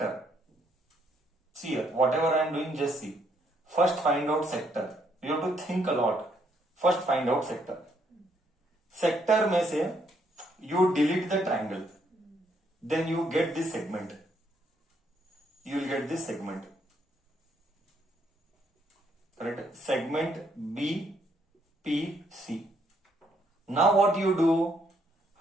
See here, whatever I am doing, just see. First, find out sector. You have to think a lot. First, find out sector. Sector में से you delete the triangle. Then you get this segment. You will get this segment. Correct? Segment BPC. Now what you do?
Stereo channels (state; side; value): normal; both; correlation 0.71